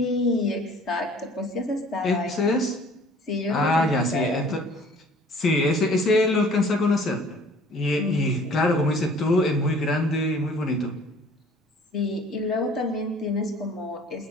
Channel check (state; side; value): normal; both; correlation 0.52